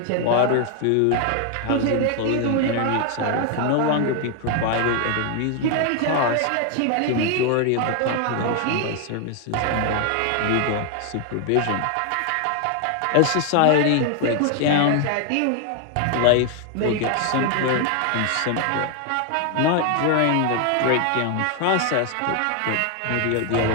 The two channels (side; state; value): both; different; correlation 0.00